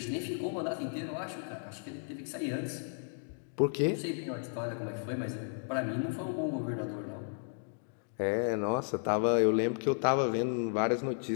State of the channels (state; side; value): silent; right; digital silence